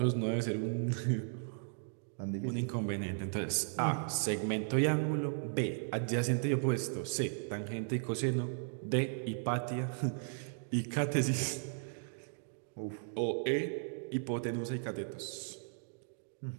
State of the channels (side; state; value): left; silent; digital silence